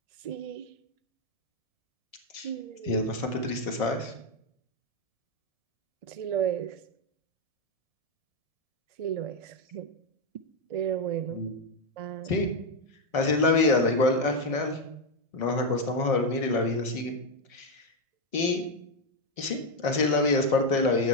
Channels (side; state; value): left; late; 1.7 ms